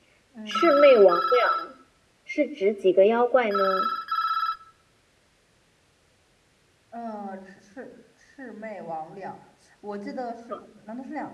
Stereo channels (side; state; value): both; identical; correlation 1.00